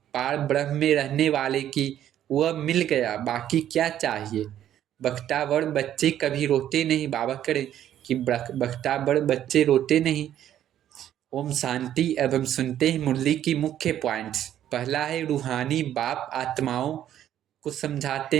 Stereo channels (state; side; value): quieter; left; 11.2 dB